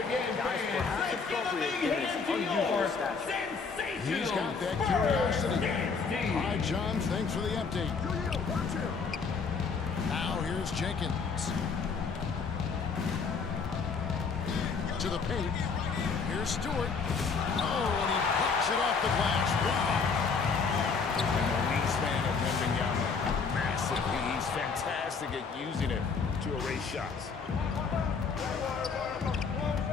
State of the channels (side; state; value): right; quieter; 5.2 dB